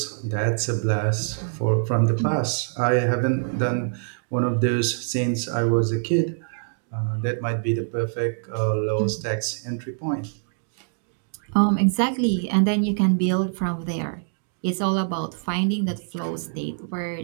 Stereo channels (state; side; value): silent; left; digital silence